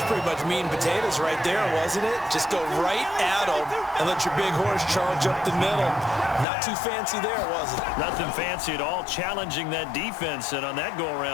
pretty much meat and potatoes right there, wasn't it? Just go right at them and let your big horse charge up the middle. Not too fancy there, was it? Nothing fancy at all, challenging that defense. And on that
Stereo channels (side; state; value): right; drops out; at 6.5 s